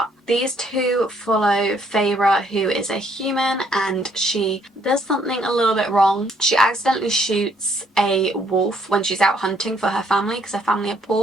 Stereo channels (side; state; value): both; normal; correlation 0.67